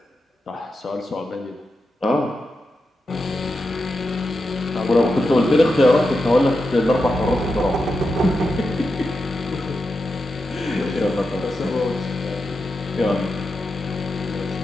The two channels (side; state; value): both; normal; correlation 0.88